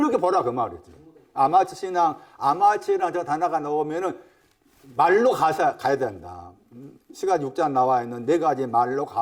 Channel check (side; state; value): both; identical; correlation 1.00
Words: 보라 그 말이지. 아마추 신앙, 아마추랑 저 단어가 나오면은 말로 가야 된다. 시간 6장 나와 있는 네 가지 말로